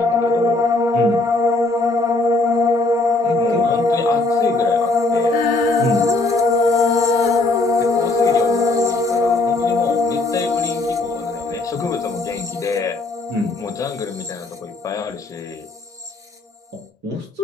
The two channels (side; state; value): right; quieter; 3.1 dB